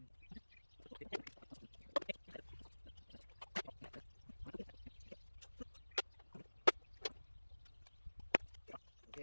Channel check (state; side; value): inverted; both; correlation -1.00